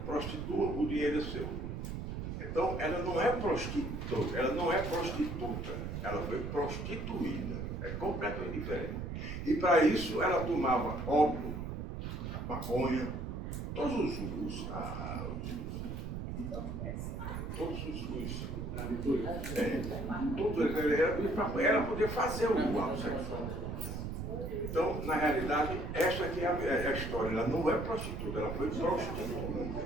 prostitua, o dinheiro é seu. Então ela não é prostituta, ela foi prostituída, é completamente diferente. E para isso ela tomava ópio, maconha, todos os tudo era poder fazer o ato sexual. Então, na realidade, essa aqui é a história. Ela não é prostituta, ela foi prostituída.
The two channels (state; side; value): noise; right; rumble, 5 dB below the sound